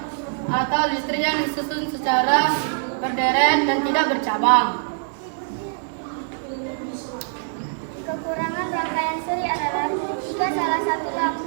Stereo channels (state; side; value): silent; left; 61 dB below the other